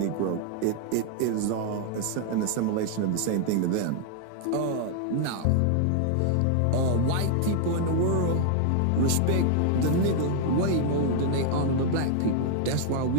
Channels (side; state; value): both; different; correlation 0.00